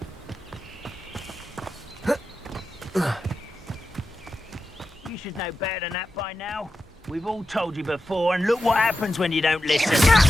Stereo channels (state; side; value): normal; both; correlation 0.91